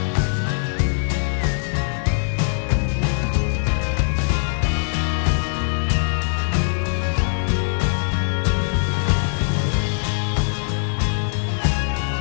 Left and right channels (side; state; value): right; silent; digital silence